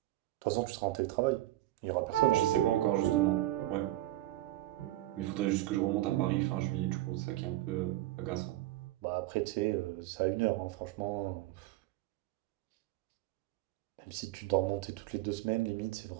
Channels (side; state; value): left; quieter; 15.8 dB